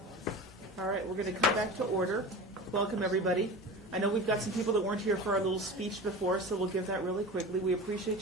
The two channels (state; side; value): normal; both; correlation 0.32